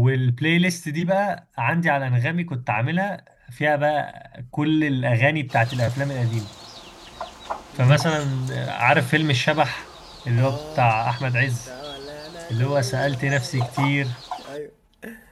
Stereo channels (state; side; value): identical; both; correlation 1.00